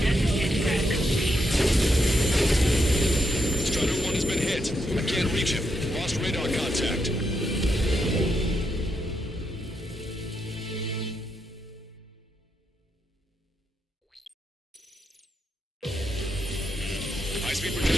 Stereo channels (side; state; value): both; normal; correlation 0.81